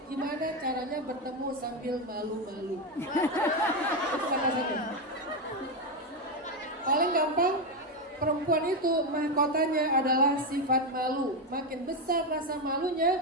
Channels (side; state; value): both; normal; correlation 0.08